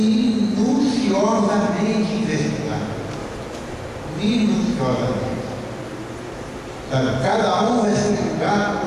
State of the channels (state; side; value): identical; both; correlation 1.00